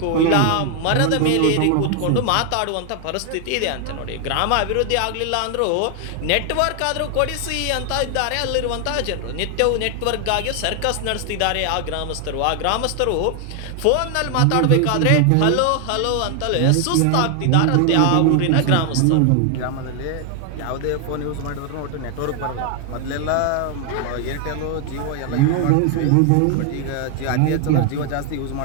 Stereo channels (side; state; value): both; different; correlation 0.00